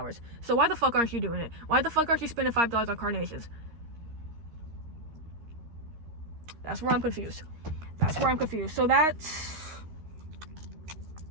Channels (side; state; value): left; late; 13 ms